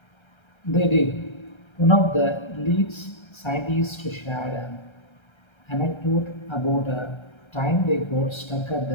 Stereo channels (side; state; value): right; late; 1.3 ms